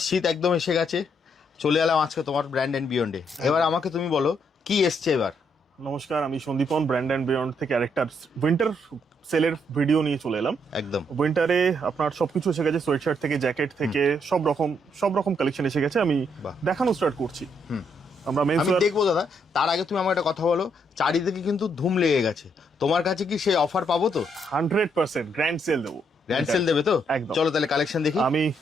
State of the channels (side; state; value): both; normal; correlation 0.74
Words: শীত একদম এসে গেছে, চলে এলাম আজকে তোমার ব্র্যান্ড এন্ড বিয়ন্ডে। এবার আমাকে তুমি বলো কি এসছে এবার। নমস্কার, আমি সন্দীপন, ব্র্যান্ড অ্যান্ড বিয়ন্ড থেকে আরেকটা উইন্টার সেলের ভিডিও নিয়ে চলে এলাম। একদম উইন্টারে আপনার সবকিছু এসে গেছে, সোয়েটশার্ট থেকে জ্যাকেট থেকে সব রকম কালেকশন এসে গেছে। আমি বাহ। দেখানো স্টার্ট করছি। আমরা আমি দেখবো দাদা, তার আগে তুমি আমার একটা কথা বলো। চারিদিকে কিন্তু ধুম লেগে গেছে, তোমার কাছে কি সেই অফার পাবো তো? 100% গ্র্যান্ড সেল দেবো। গ্র্যান্ড সেল দেবে তো? একদম। চলো তাহলে কালেকশন দেখি। আমি